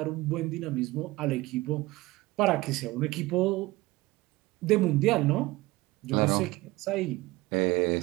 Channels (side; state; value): left; quieter; 20.0 dB